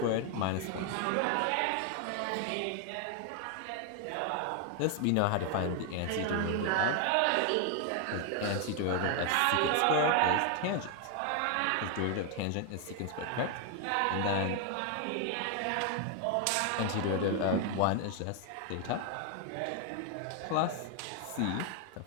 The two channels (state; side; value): different; both; correlation 0.00